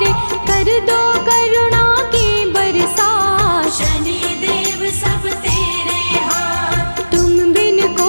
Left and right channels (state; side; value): inverted; both; correlation -1.00